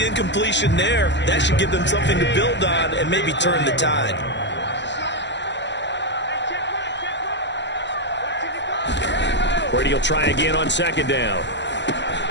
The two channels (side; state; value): right; late; 0.52 ms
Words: incompletion there, that should give them something to build on and maybe turn the tide. Brady will try again on 2nd down.